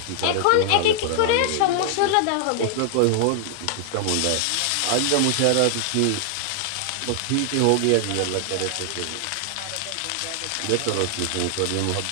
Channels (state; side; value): different; both; correlation 0.00